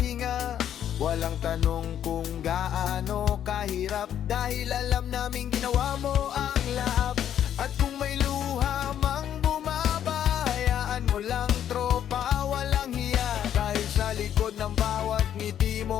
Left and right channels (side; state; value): right; quieter; 10.1 dB